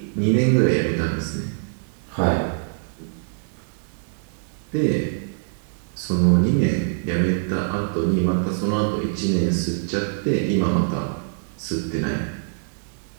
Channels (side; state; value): left; silent; digital silence